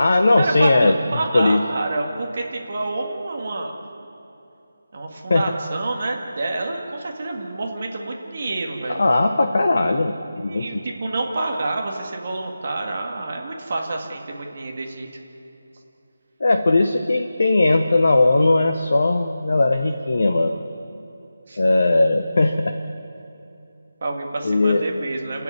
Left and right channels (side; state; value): both; inverted; correlation -0.94